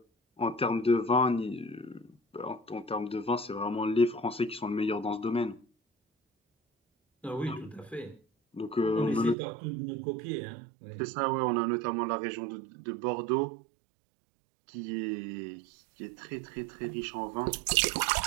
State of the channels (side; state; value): left; drops out; at 9.3 s